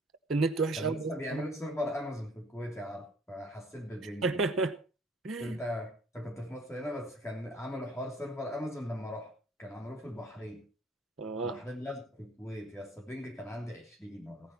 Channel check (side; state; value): both; normal; correlation 0.56